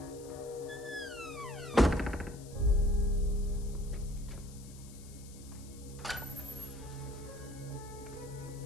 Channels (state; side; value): noise; left; hiss, 19 dB below the sound